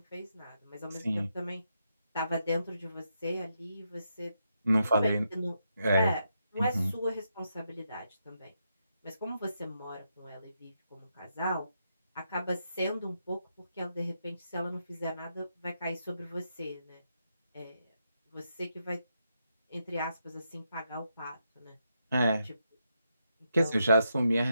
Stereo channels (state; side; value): inverted; both; correlation -0.82